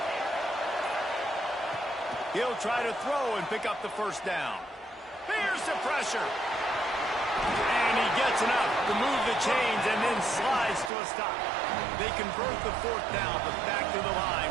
He'll try to throw and pick up the first down. Here's the pressure. And he gets enough to move the chains and then slides to a stop. They convert the fourth down, but back to the line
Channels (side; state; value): left; drops out; at 10.9 s